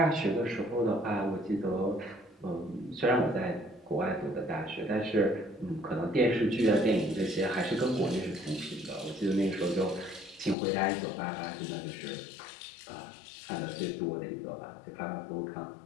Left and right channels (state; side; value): drops out; right; at 10.6 s